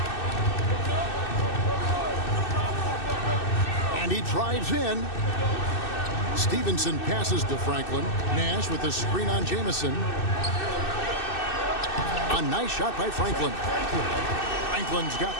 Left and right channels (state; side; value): late; right; 2.6 ms